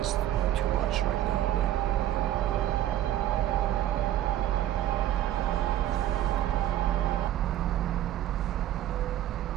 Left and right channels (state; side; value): quieter; left; 12.4 dB